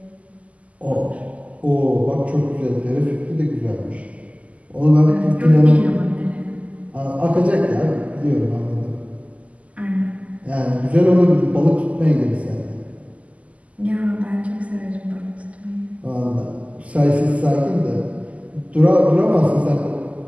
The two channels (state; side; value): late; left; 0.068 ms